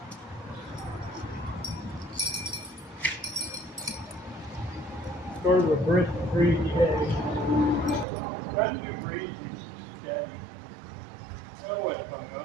Sort of a brisk, breezy day. Not too breezy, steady. Oh, it hung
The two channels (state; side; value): drops out; left; at 8.1 s